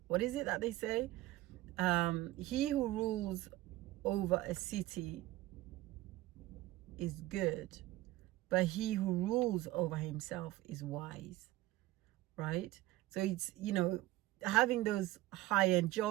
What is it that they say? He who rules over a city is good, but he who rules over himself is wise, right? So it's, having those high-end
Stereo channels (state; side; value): quieter; left; 16.9 dB